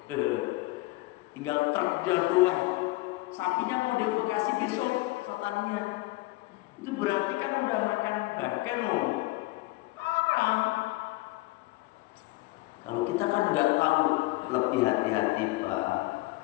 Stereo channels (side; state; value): right; quieter; 20.6 dB